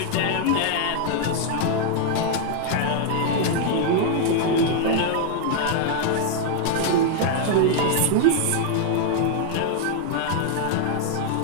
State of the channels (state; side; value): different; both; correlation 0.00